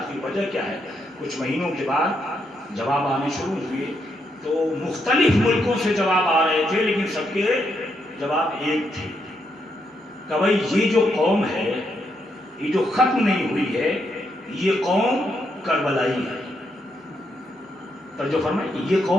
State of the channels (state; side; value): normal; both; correlation 0.79